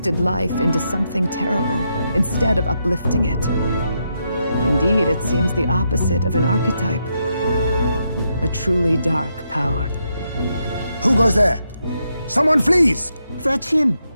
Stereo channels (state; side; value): inverted; both; correlation -0.81